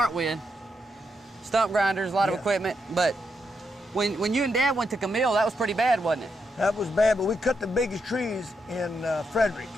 with. Stump grinders, a lot of equipment. But when you and Dad went to Camille, that was pretty bad, wasn't it? That was bad, but we cut the biggest trees in Frederick.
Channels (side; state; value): both; normal; correlation 0.82